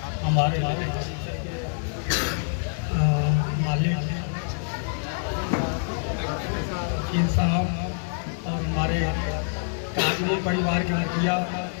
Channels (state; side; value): silent; right; digital silence